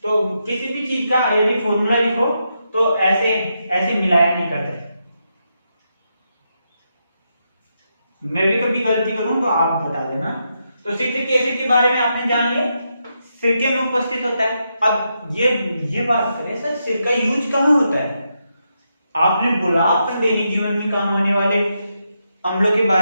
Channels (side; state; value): both; inverted; correlation -0.83